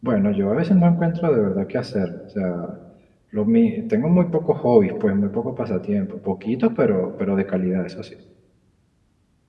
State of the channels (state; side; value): identical; both; correlation 1.00